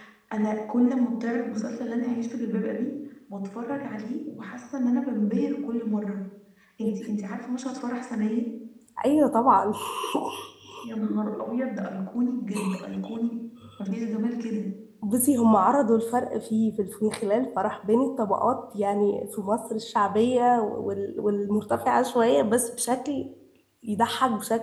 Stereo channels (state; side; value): identical; both; correlation 1.00